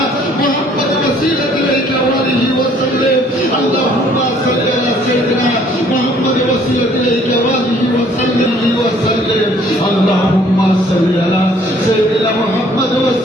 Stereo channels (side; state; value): both; normal; correlation 0.59